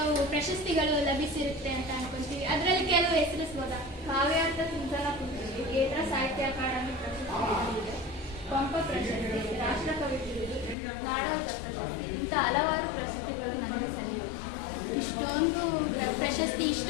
ಪ್ರಶಸ್ತಿಗಳು ಲಭಿಸಿರುತ್ತೆ ಅಂತ ಅನ್ಕೊಂತೀವಿ. ಅದರಲ್ಲಿ ಕೆಲವು ಹೆಸರಿಸ್ಬೋದಾ? ಕಾವ್ಯಾರ್ಥ ಚಿಂತನ ಕೃತಿಗೆ ಕೇಂದ್ರ ಸಾಹಿತ್ಯ ಅಕಾಡೆಮಿ ಪ್ರಶಸ್ತಿ, ಪಂಪ ಪ್ರಶಸ್ತಿ, ರಾಷ್ಟ್ರಕವಿ ಬಿರುದು, ನಾಡೋಜ ಪ್ರಶಸ್ತಿ, ಇಂಥ ಹಲವಾರು ಪ್ರಶಸ್ತಿಗಳು ನಮಗೆ ಸಲ್ಲಿವೆ. ಇಷ್ಟೊಂದು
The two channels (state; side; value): drops out; right; at 10.8 s